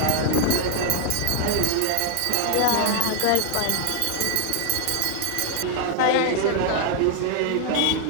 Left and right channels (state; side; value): different; both; correlation 0.00